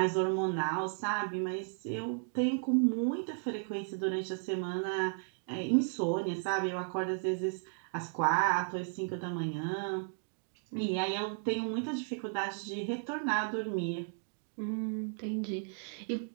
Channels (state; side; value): silent; left; 55 dB below the other